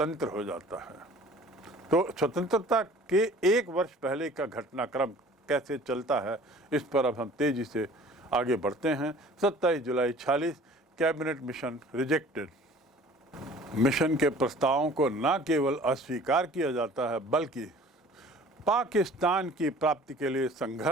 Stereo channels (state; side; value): normal; both; correlation 0.48